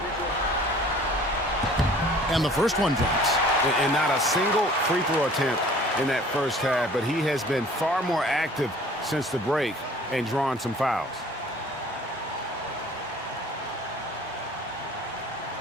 And the first one drops. And not a single free throw attempt in that first half, but he has been far more active since the break and drawn some fouls.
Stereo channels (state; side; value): normal; both; correlation 0.50